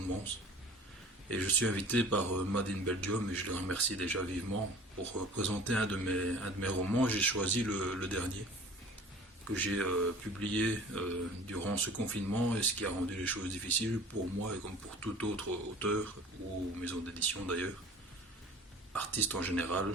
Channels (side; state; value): both; normal; correlation 0.45